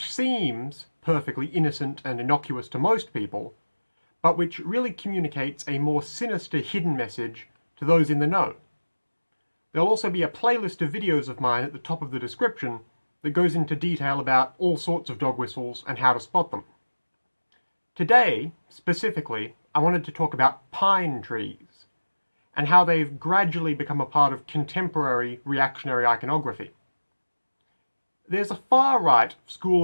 seems perfectly innocent and innocuous to most people, but which really communicates a more sinister hidden message to those in the know. There'll also be a playlist of videos of mine at the top of the description that goes into detail about all sorts of dog whistles and how to spot them. Today, specifically, I wanted to talk about pine trees and how they've gradually become a part of contemporary reactionary iconography. There's a far-right school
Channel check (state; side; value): inverted; both; correlation -1.00